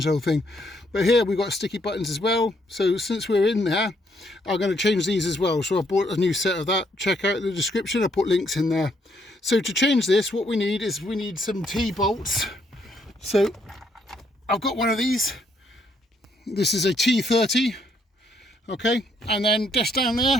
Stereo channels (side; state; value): both; normal; correlation 0.71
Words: the whole thing. But here we've got sticky buttons as well, so since we're in there, I'm going to change these as well. So I bought a new set of that. Check out the description, I put links in there. So to change this, what we need is some T-bolts. So I've got one of these. This is a T30, okay, and then just down